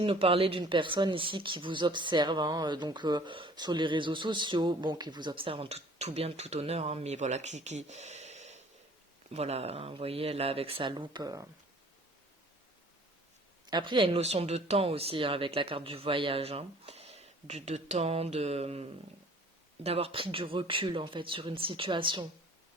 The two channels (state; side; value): normal; both; correlation 0.51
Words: nous parler d'une personne ici qui vous observe, hein, donc sur les réseaux sociaux, bon, qui vous observe en tout bien, tout honneur, hein, mais voilà, voilà, hein, vous voyez, là, avec sa loupe. Après, il y a une notion de temps aussi, hein, avec la carte du voyage, hein, de temps, d'avoir pris du recul, en fait, sur une situation.